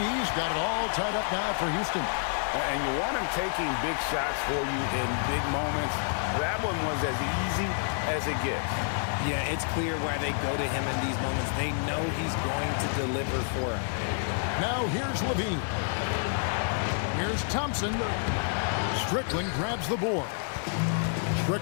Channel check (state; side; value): silent; right; 59 dB below the other